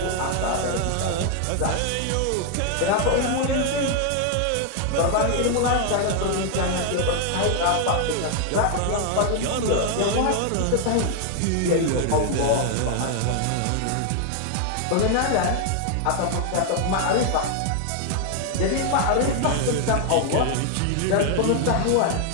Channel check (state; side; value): different; both; correlation 0.00